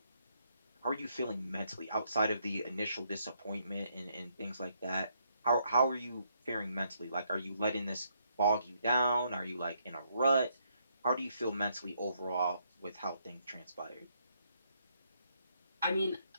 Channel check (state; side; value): inverted; both; correlation -0.73